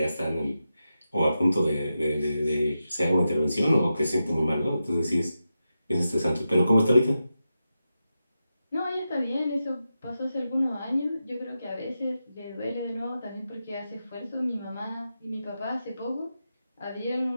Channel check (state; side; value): inverted; both; correlation -0.89